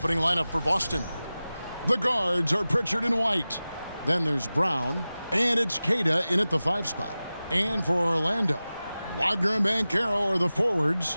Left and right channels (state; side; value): inverted; both; correlation -0.96